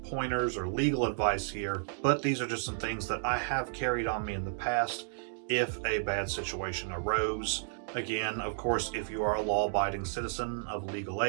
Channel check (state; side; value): silent; left; digital silence